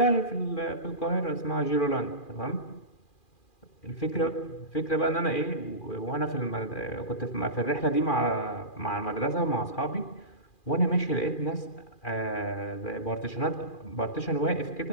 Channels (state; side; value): late; right; 2.4 ms